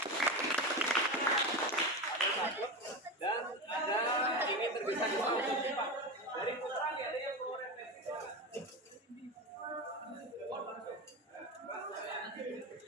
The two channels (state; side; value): normal; both; correlation 0.21